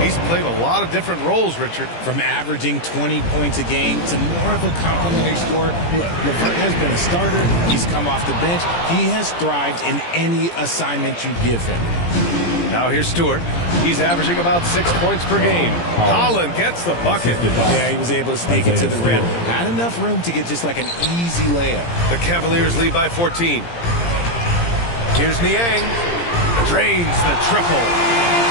he's played a lot of different roles, Richard. From averaging 20 points a game to more of a complimentary scorer. LeVert has been a starter. He's come off the bench. He has thrived in any assignment you give him. Now here's Stewart. He's averaging about 6 points per game. Holland gets the bucket. Yeah, he was able to sneak it to the rim. Had enough room to get just like an easy layup. The Cavaliers lead by 14. Here's Niang. Drains the triple.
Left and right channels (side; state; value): right; late; 17 ms